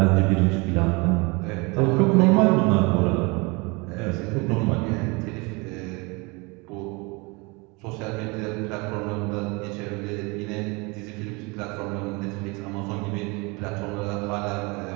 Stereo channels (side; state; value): left; quieter; 27.5 dB